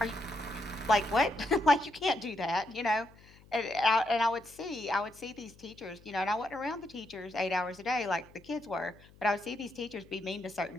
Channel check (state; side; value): noise; left; hum, 25 dB below the sound